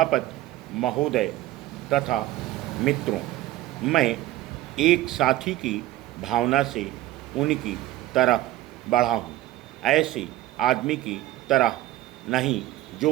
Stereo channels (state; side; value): quieter; left; 15.5 dB